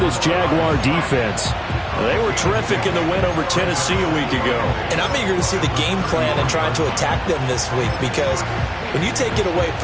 Jaguar defense. They were terrific in the win over Tennessee a week ago. And I'm eager to see the game plan and trying to attack them this week, because when you take it away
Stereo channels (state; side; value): identical; both; correlation 1.00